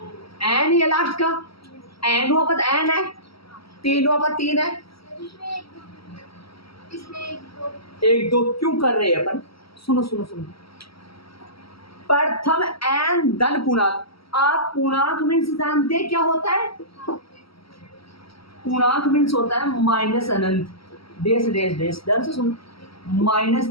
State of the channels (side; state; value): right; late; 0.75 ms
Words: एन ही है लास्ट का, एन हुआ पद एन है, 3 हुआ पद 3 है, 1 2 क्यों कर रहे हैं अपन, सुनो सुनो सुनो। प्रथम एन धन पूर्णांक, आप पूर्णांक मीन्स जानते हैं क्या होता है, पूर्णांक मीन्स होता है माइनस अनंत, डेश डेश डेश, ध्यान से सुनो,